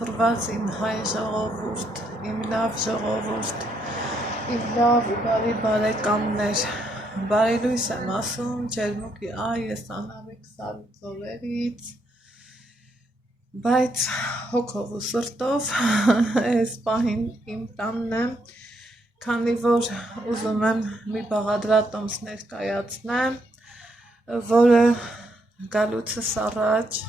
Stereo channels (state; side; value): normal; both; correlation 0.75